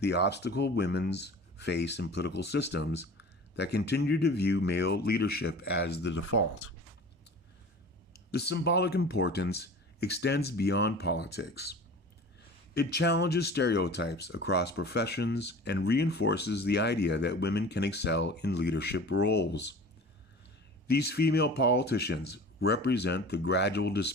obstacle women face in political systems that continue to view male leadership as the default. The symbolic importance extends beyond politics. It challenges stereotypes across professions and reinforces the idea that women can excel in leadership roles. These female politicians represent the gradual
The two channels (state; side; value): normal; both; correlation 0.39